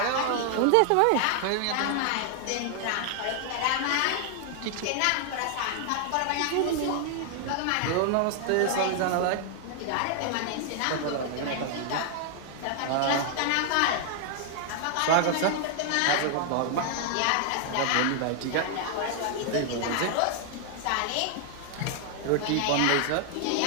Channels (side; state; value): both; different; correlation 0.00